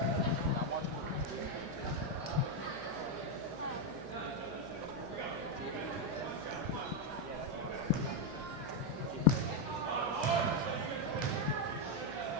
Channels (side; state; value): left; noise; hum, 18 dB below the sound